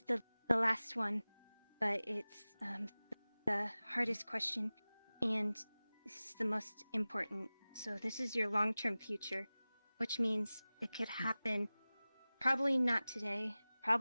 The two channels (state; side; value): inverted; both; correlation -0.98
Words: the last one, but it's the hardest question, and this is the most important. So this is your long-term future, which means it could happen probably not today,